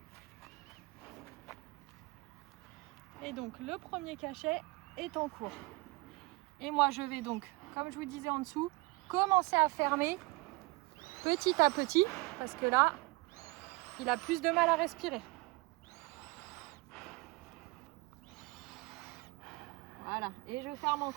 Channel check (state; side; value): quieter; left; 24.9 dB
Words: Et donc le premier cachet est en cours. Et moi je vais donc, comme je vous disais en dessous, commencer à fermer petit à petit. Parce que là, il a plus de mal à respirer. Voilà, et je ferme